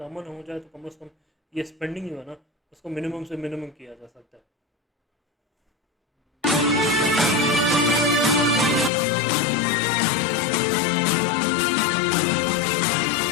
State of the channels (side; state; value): right; drops out; at 8.9 s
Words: अमन हो जाए तो कम से कम ये स्पेंडिंग जो है ना उसको मिनिमम से मिनिमम किया जा सकता है।